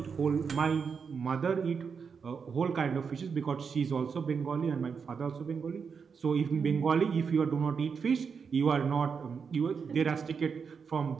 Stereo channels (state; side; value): quieter; left; 6.0 dB